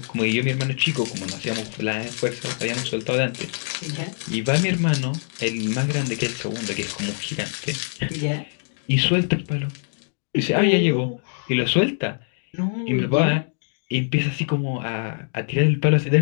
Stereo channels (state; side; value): silent; right; digital silence